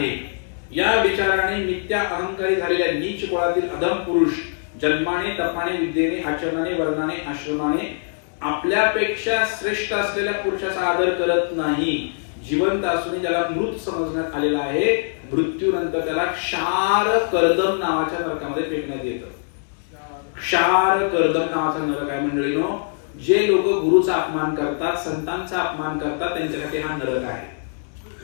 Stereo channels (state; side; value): silent; right; digital silence